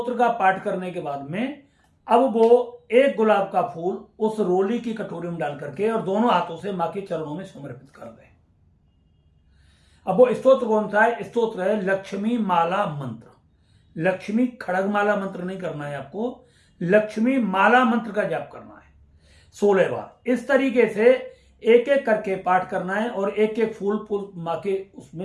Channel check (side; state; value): both; identical; correlation 1.00